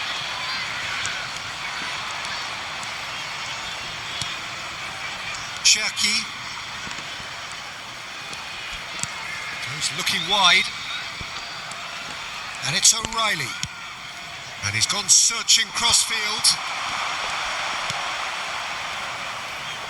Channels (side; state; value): both; identical; correlation 1.00